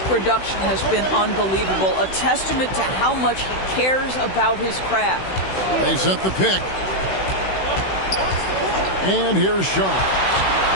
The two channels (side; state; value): right; late; 16 ms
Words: has been unbelievable. A testament to how much he cares about his craft. They set the pick. And here's Sharp.